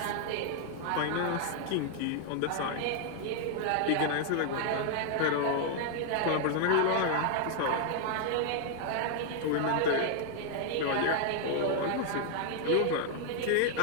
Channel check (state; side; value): different; both; correlation 0.00